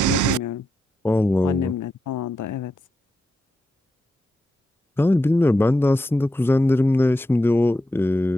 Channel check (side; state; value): both; normal; correlation 0.86